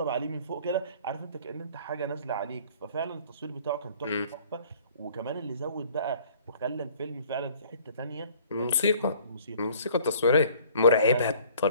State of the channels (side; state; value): both; inverted; correlation -0.54